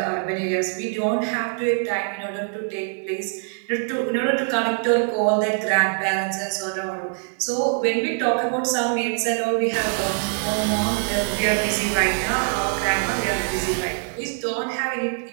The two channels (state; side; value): silent; left; 56 dB below the other